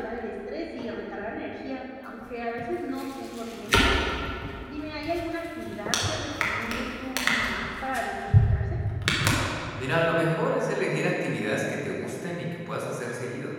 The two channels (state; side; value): identical; both; correlation 1.00